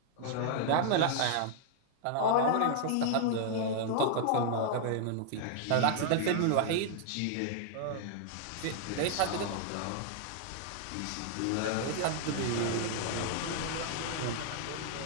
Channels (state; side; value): different; both; correlation 0.00